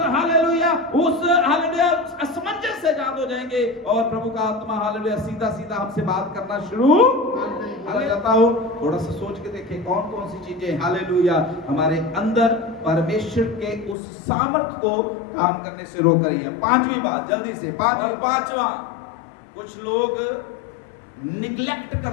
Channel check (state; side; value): drops out; right; at 14.0 s